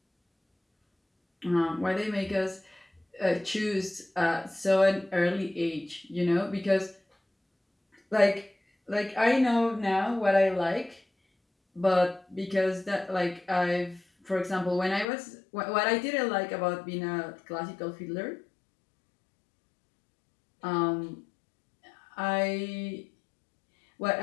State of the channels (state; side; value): drops out; right; at 15.1 s